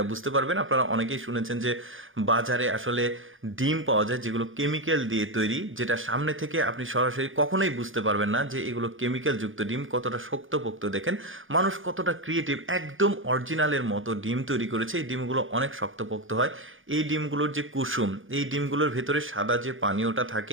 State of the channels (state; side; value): late; left; 0.58 ms